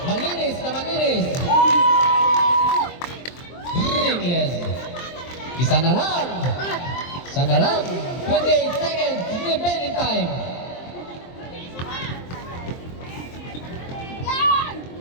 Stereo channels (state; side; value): late; right; 23 ms